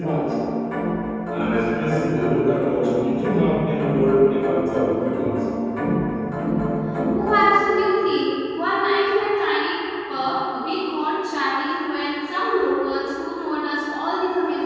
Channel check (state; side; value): identical; both; correlation 1.00